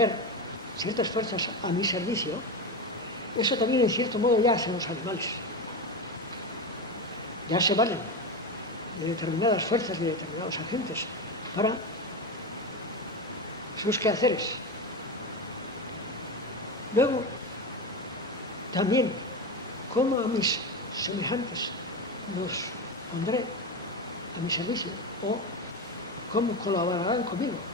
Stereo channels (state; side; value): normal; both; correlation 0.19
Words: ciertas fuerzas a mi servicio, eso también en cierto modo ya hacen los animales. Ya se valen de determinadas fuerzas, de determinados agentes para sus quehaceres. Luego, también, cómo a mis semejantes los pondré a mi servicio o cómo colaborarán conmigo.